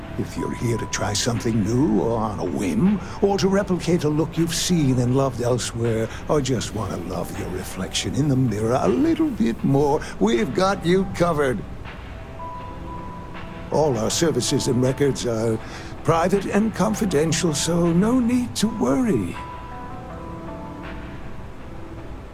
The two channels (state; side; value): identical; both; correlation 1.00